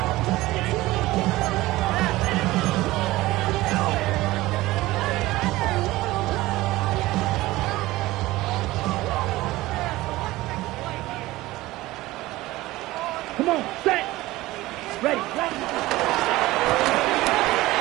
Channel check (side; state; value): left; quieter; 18.2 dB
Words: Come on, set. Ready.